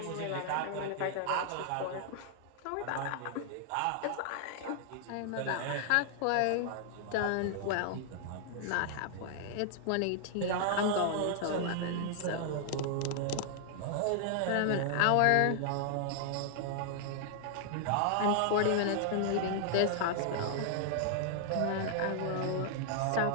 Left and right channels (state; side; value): different; both; correlation -0.01